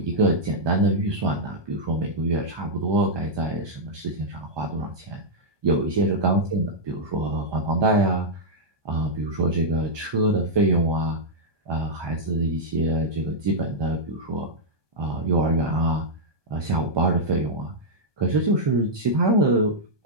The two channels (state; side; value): late; left; 1.2 ms